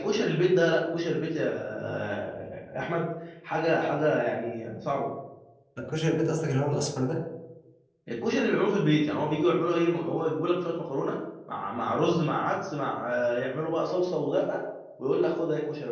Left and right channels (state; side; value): identical; both; correlation 1.00